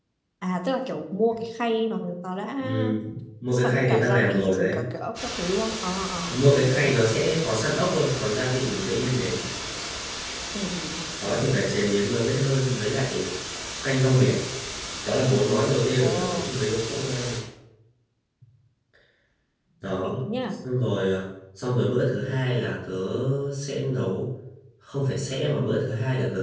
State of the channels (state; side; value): identical; both; correlation 1.00